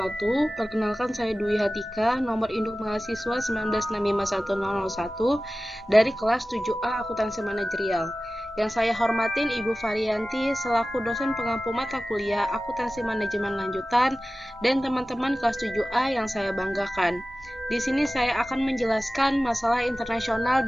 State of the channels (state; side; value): normal; both; correlation 0.96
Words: Perkenalkan saya Dwi Hatika, nomor induk mahasiswa 19651001 dari kelas 7A Akuntansi Manajerial. Yang saya hormatin Ibu Varianti selaku dosen pengampu mata kuliah Akuntansi Manajemen Lanjutan dan teman-teman kelas 7A yang saya banggakan. Di sini saya akan menjelaskan masalah internasional